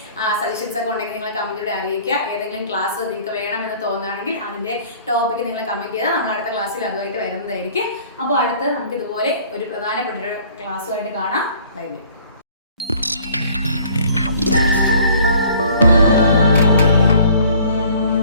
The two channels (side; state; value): both; inverted; correlation -0.54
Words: സജഷൻസ് ഒക്കെ ഉണ്ടെങ്കിൽ നിങ്ങൾ കമന്റിലൂടെ അറിയിക്കുക. ഏതെങ്കിലും ക്ലാസ് നിങ്ങൾക്ക് വേണമെന്ന് തോന്നുകയാണെങ്കിൽ അതിന്റെ ടോപ്പിക്ക് നിങ്ങൾ കമന്റ് ചെയ്താൽ നമ്മൾ അടുത്ത ക്ലാസ്സിൽ അതുമായിട്ട് വരുന്നതായിരിക്കും. അപ്പോൾ അടുത്ത് നമുക്ക് ഇതുപോലെ ഒരു പ്രധാനപ്പെട്ട ഒരു ക്ലാസ്സുമായിട്ട് കാണാം. Bye bye.